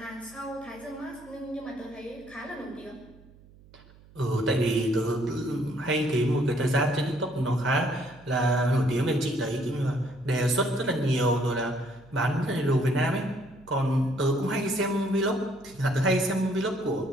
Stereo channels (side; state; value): right; noise; hum, 24 dB below the sound